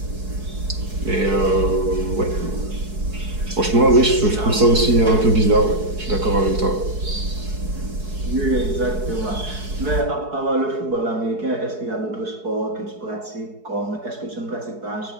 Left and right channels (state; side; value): late; left; 4.7 ms